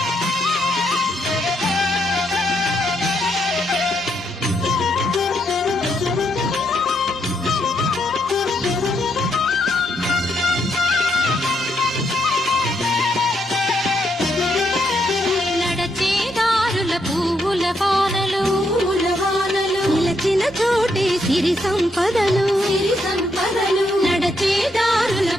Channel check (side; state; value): both; normal; correlation 0.77